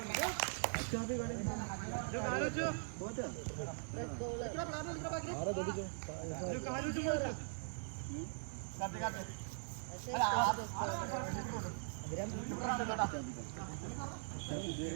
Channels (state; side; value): silent; left; 50 dB below the other